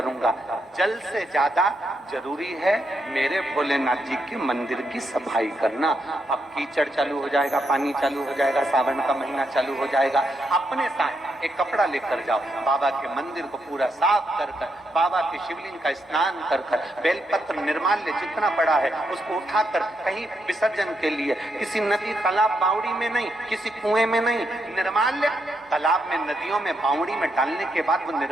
जल से ज्यादा जरूरी है मेरे भोलेनाथ जी के मंदिर की सफाई करना। अब कीचड़ चालू हो जाएगा, पानी चालू हो जाएगा, सावन का महीना चालू हो जाएगा, अपने साथ एक कपड़ा लेकर जाओ, बाबा के मंदिर को पूरा साफ कर कर, बाबा के शिवलिंग का स्नान कर कर, बेलपत्र निर्माल्य जितना पड़ा है उसको उठाकर कहीं विसर्जन के लिए, किसी नदी तालाब बावड़ी में नहीं, किसी कुएं में नहीं, निर्माल्य तालाब में, नदियों में, बावड़ी में डालने के बाद वो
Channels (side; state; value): both; normal; correlation 0.80